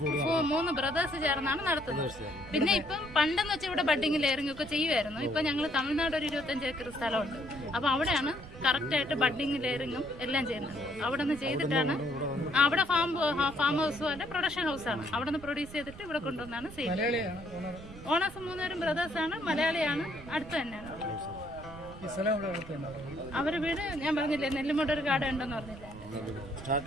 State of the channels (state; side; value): noise; right; rumble, 16 dB below the sound